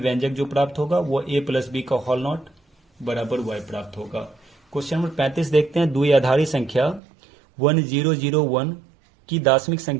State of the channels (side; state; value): left; drops out; at 7.0 s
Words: जो प्राप्त होगा वो a प्लस बी का होल नॉट बराबर y प्राप्त होगा। क्वेश्चन नंबर 35 देखते हैं, द्विआधारी संख्या 1001 की दशमिक